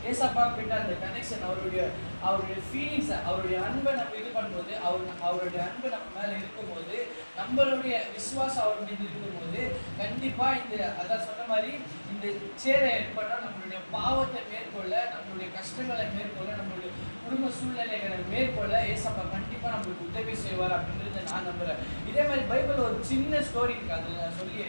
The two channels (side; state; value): both; inverted; correlation -1.00